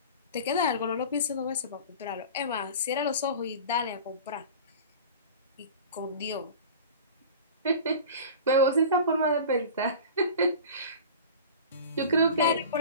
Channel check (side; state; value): both; inverted; correlation -0.36